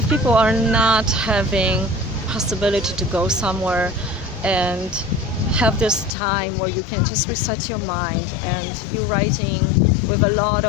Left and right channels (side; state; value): right; drops out; at 6.2 s